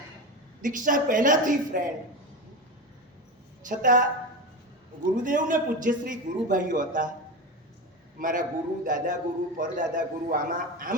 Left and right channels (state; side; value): normal; both; correlation 0.22